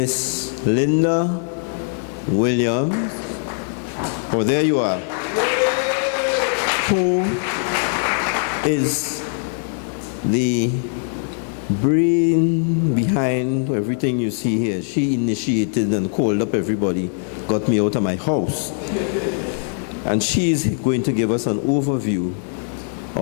Linda Williams. Oh, there you are. Who is the brain behind everything you see here. She initiated and called up everybody, got me out of my house. And she's going to give us an overview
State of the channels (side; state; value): right; silent; digital silence